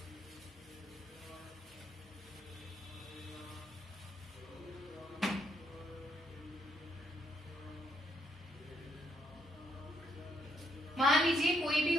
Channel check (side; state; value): both; normal; correlation 0.74